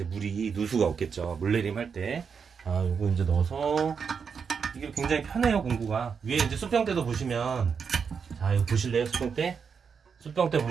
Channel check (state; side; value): quieter; left; 6.2 dB